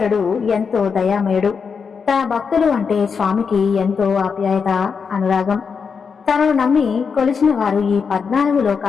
ఎంతో దయామయుడు. తన భక్తులు అంటే స్వామికి ఎంతో ఆప్యాయత, అనురాగం. తనను నమ్మి కొలిచిన వారు ఈ 14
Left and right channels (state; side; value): quieter; right; 5.9 dB